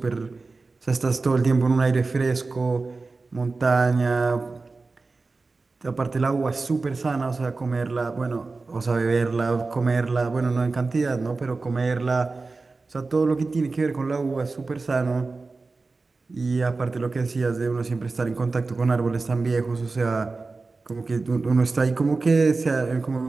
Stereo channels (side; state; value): left; quieter; 3.8 dB